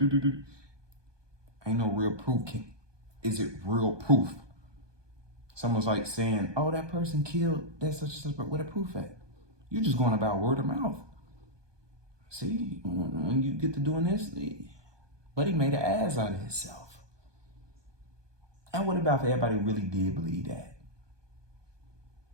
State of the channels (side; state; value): left; late; 1.2 ms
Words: Ain't no real proof. Is it real proof? Someone's like saying, oh, that person killed that such and such, but where the proof at? You're just going about word of mouth. See, when you get to doing this, buddy made an ass out of himself. And what about if everybody really did believe that?